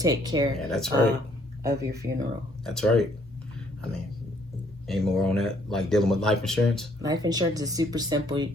care of your funeral. That's right. I mean, any more on that, like dealing with life insurance? Life insurance is super simple.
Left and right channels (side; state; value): both; normal; correlation 0.65